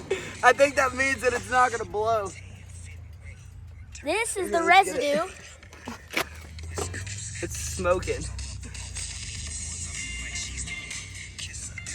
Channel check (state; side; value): identical; both; correlation 1.00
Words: that it's not gonna blow. This is the residue. It's smoking.